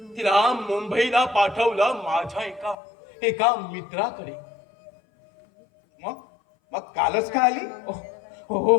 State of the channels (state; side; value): drops out; right; at 2.8 s